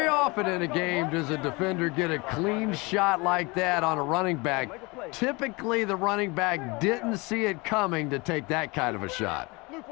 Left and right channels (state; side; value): quieter; right; 26.1 dB